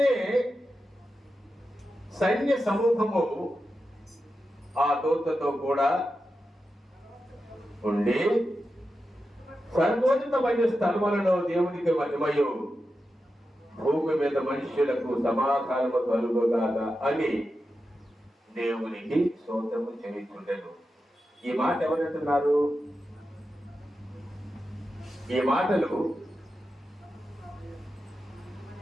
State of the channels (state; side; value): normal; both; correlation 0.90